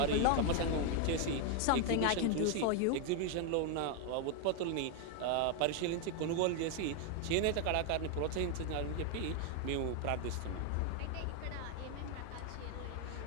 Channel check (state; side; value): different; both; correlation 0.01